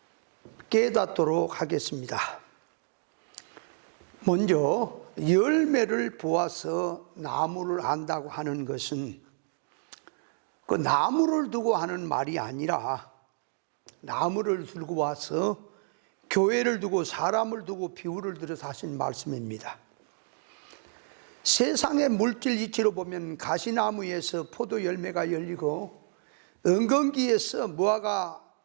깨닫도록 하겠습니다. 먼저 열매를 보아서 나무를 안다고 하는 것은 그 나무를 두고 하는 말이 아니라 나무를 들고 와서 교회를 두고 사람을 두고 비유를 들어서 하신 말씀입니다. 세상의 물질 이치로 보면 가시나무에서 포도 열매가 열리고 은근기에서 무화과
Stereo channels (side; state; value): left; silent; digital silence